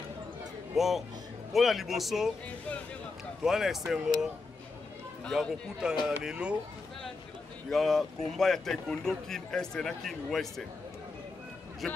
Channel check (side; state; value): right; quieter; 3.9 dB